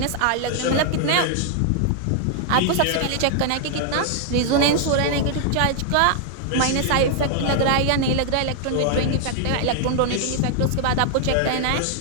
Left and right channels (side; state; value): both; different; correlation 0.00